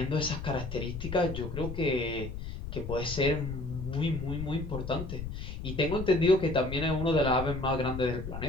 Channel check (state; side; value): noise; left; rumble, 7 dB below the sound